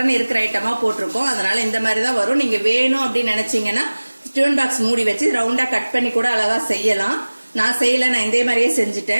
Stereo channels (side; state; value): both; inverted; correlation -1.00